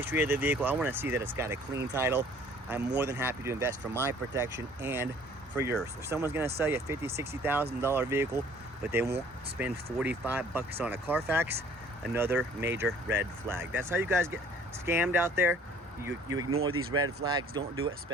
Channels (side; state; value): both; normal; correlation 0.54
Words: of the vehicle. I want to see that it's got a clean title. I'm more than happy to invest for my protection and for yours. If someone's going to sell you a $50,000, $60,000 vehicle, but they won't spend 45 bucks on a Carfax, another major red flag. That's how you guys get scammed out there. You ignore these red flags. Don't do it,